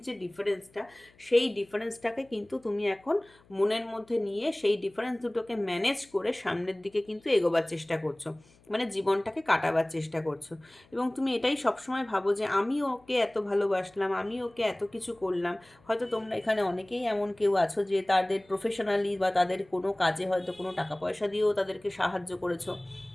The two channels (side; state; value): left; noise; hum, 29 dB below the sound